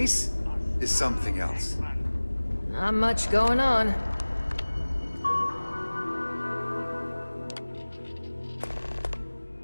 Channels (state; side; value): inverted; both; correlation -1.00